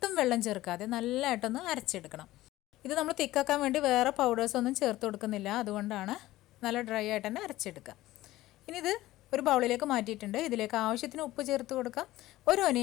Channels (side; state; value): right; quieter; 16.5 dB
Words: വെള്ളം ചേർക്കാതെ നല്ലതായിട്ടൊന്ന് അരച്ചെടുക്കണം. ഇത് നമ്മൾ തിക്കാക്കാൻ വേണ്ടി വേറെ പൗഡേഴ്സൊന്നും ചേർത്ത് കൊടുക്കുന്നില്ല, അതുകൊണ്ടാണ് നല്ല ഡ്രൈ ആയിട്ട് തന്നെ അരച്ചെടുക്കുക. ഇനി ഇത് ഒരു ബൗളിലേക്ക് മാറ്റിയിട്ടുണ്ട്. ഇതിലേക്ക് ആവശ്യത്തിന് ഉപ്പ് ചേർത്ത് കൊടുക്കാം.